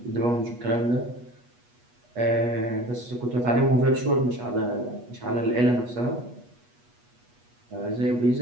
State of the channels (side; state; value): left; late; 8.3 ms